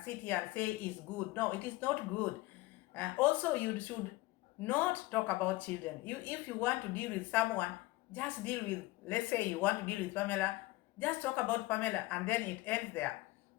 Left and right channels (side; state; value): right; quieter; 20.0 dB